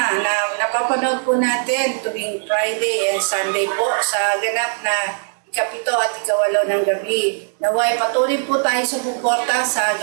na napapanood po natin tuwing Friday and Sunday po sa ganap na ikapito at ikawalo ng gabi. Naway patuloy po tayo sa suporta sa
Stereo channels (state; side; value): silent; left; digital silence